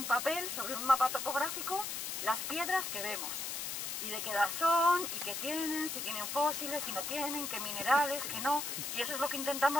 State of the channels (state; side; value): noise; left; hiss, 4 dB below the sound